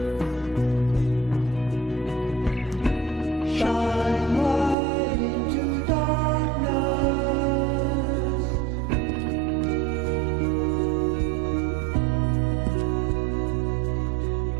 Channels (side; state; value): left; drops out; at 4.8 s